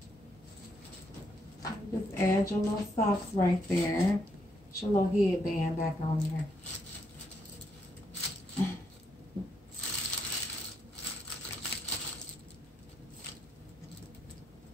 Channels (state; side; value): normal; both; correlation 0.76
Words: Just add your little socks right there. Put your little headband back on there.